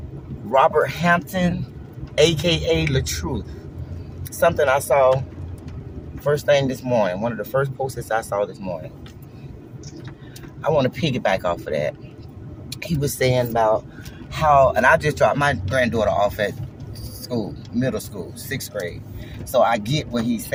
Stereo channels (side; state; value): both; identical; correlation 1.00